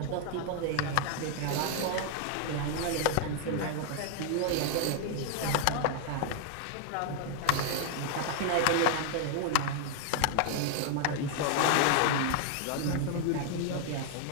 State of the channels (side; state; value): both; different; correlation 0.00